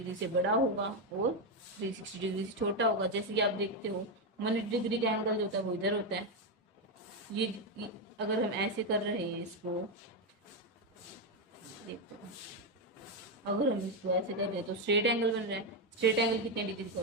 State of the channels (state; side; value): normal; both; correlation 0.06